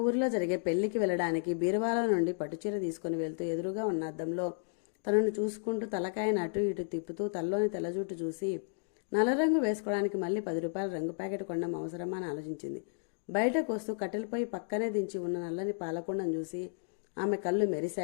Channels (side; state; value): right; silent; digital silence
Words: ఊరిలో జరిగే పెళ్లికి వెళ్ళడానికి బీరువాలో నుండి పట్టుచీర తీసుకుని వెళ్తూ ఎదురుగా ఉన్న అద్దంలో తనను చూసుకుంటూ తలకాయను అటు ఇటు తిప్పుతూ తల్లోని తెల్లజుట్టు చూసి నల్లరంగు వేసుకోవడానికి మళ్ళీ 10 రూపాయల రంగు ప్యాకెట్ కొనడం అవసరమా అని ఆలోచించింది. బయటకు వస్తూ కట్టెలపై పక్కనే దించి ఉన్న నల్లని పాలకుండను చూసి ఆమె కళ్ళు